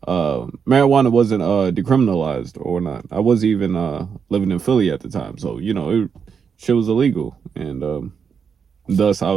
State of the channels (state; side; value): quieter; left; 6.5 dB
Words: marijuana wasn't decriminalized or not. I wasn't even living in Philly at the time, so you know shit was illegal, and thus I